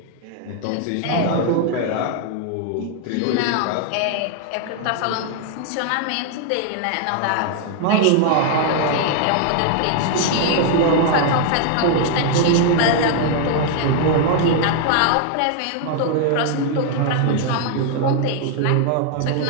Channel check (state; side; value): different; both; correlation 0.00